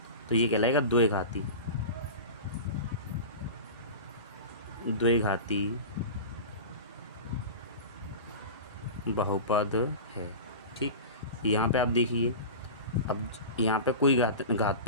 तो ये कहलाएगा द्विघाती बहुपद है। ठीक, यहाँ पे आप देखिए, अब यहाँ पे कोई घात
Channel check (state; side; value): inverted; both; correlation -0.30